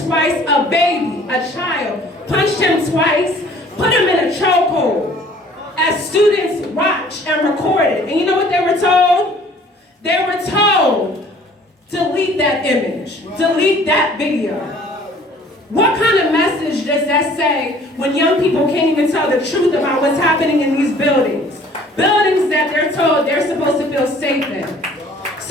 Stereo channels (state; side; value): normal; both; correlation 0.54